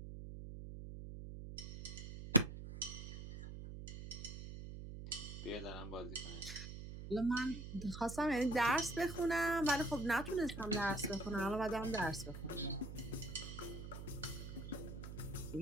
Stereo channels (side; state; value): right; noise; hum, 9 dB below the sound